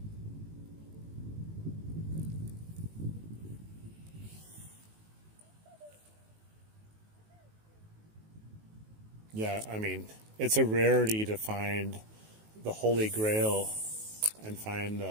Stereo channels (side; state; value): left; late; 19 ms